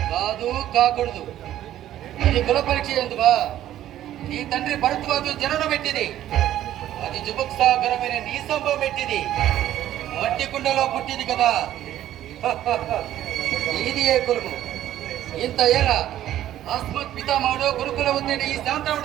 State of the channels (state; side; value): quieter; left; 12.6 dB